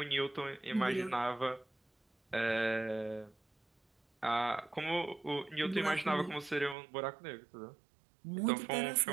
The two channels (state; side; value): drops out; left; at 6.8 s